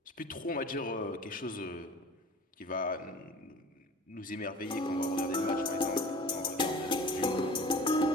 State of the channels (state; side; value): normal; both; correlation 0.41